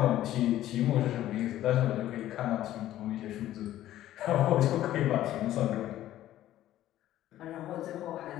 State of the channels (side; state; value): right; quieter; 13.4 dB